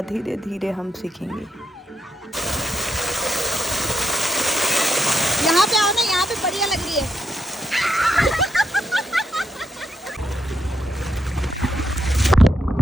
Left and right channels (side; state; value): both; normal; correlation 0.80